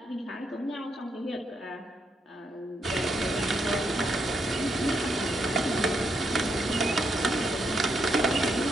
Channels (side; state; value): both; normal; correlation 0.78